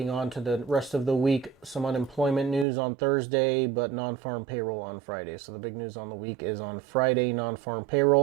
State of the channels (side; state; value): left; drops out; at 2.7 s